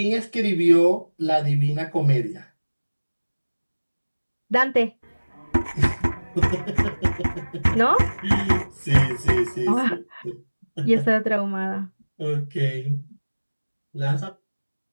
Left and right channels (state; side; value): inverted; both; correlation -1.00